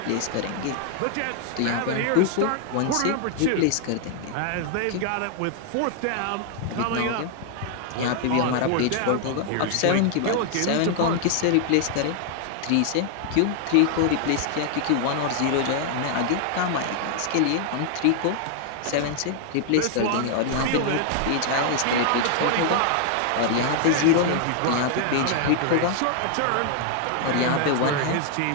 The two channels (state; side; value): different; both; correlation 0.00